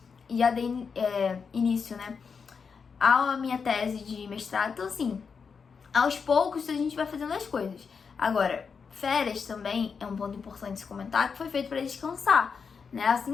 Já dei início, né? A minha tese de mestrado. Então, assim, aos poucos a gente vai fazendo as coisas. Agora, férias também é um ponto importante se comentar, que foi feito para descansar, né?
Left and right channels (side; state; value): right; quieter; 5.7 dB